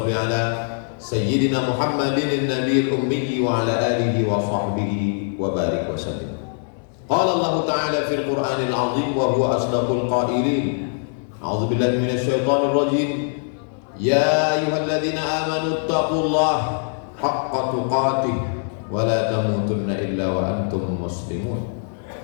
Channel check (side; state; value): right; silent; 64 dB below the other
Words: ala sayyidina Muhammadin an-nabiyil ummi wa ala alihi wa sahbihi wa barik wa sallim. Qala Allah Ta'ala fil Qur'anil Azim wa huwa asdaqul qailin. A'udzu billahi minasy syaithanir rajim. Ya ayyuhalladzina amanu taqullaha haqqa tuqatih wa la tamutunna illa wa antum muslimun.